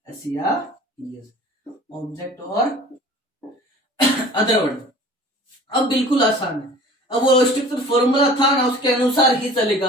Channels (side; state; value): both; normal; correlation 0.45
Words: एस या ईएस, ऑब्जेक्ट और अदर वर्ड। अब बिल्कुल आसान है, अब वो स्ट्रक्चर फॉर्मूला था ना उसके अनुसार ही चलेगा।